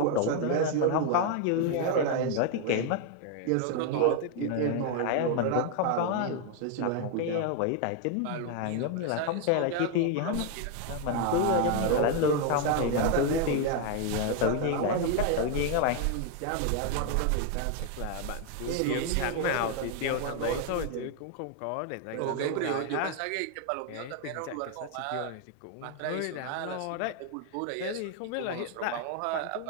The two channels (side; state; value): both; different; correlation 0.01